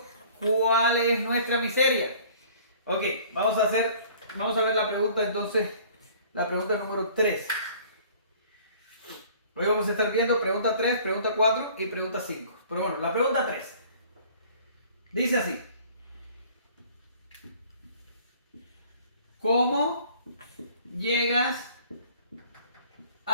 cuál es nuestra miseria. Ok, vamos a ver la pregunta entonces, la pregunta número 3. Hoy vamos a estar viendo pregunta 3, pregunta 4 y pregunta 5. Pero bueno, la pregunta 3 dice así. ¿Cómo llegas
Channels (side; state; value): both; inverted; correlation -0.52